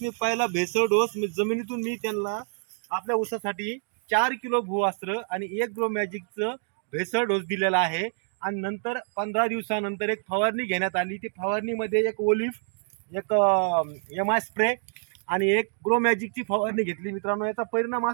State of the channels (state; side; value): silent; left; 60 dB below the other